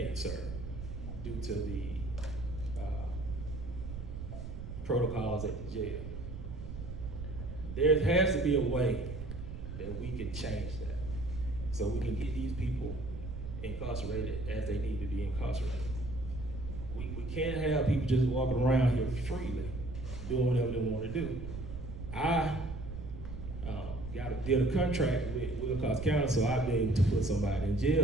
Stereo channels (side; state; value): right; noise; rumble, 8 dB below the sound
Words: serve due to the protocols at the jail. There has to be a way that we can change that so we can get these people incarcerated as they need to be incarcerated. We can't have people just walking around here freely doing whatever they want to do. I did a contract with Wilcox County so I'd be able to put somebody in